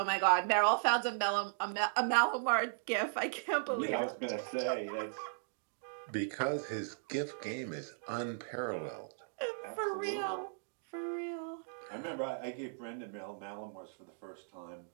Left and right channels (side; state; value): left; silent; digital silence